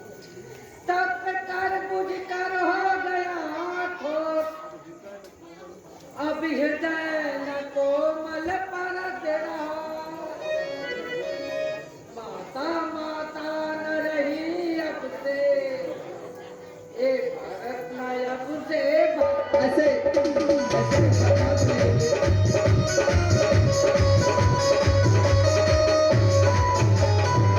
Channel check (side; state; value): both; identical; correlation 1.00